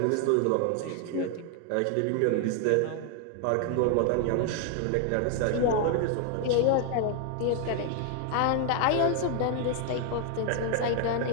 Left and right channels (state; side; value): different; both; correlation 0.00